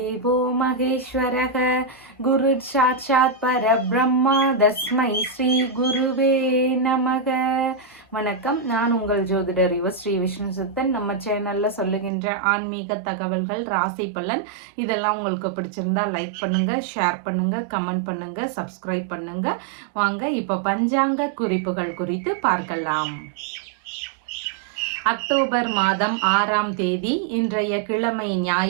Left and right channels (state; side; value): drops out; left; at 12.1 s